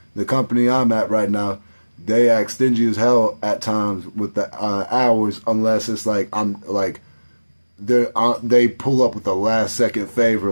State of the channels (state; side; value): inverted; both; correlation -1.00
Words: the company I'm at right now, they act stingy as hell at times with the hours, unless it's like they pull up with a last second favor,